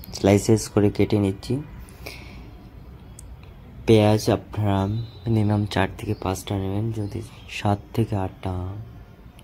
স্লাইসেস করে কেটে নিচ্ছি। পেঁয়াজ আপনারা মিনিমাম 4 থেকে 5টা নেবেন, যদি 7 থেকে 8টা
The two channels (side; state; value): both; identical; correlation 1.00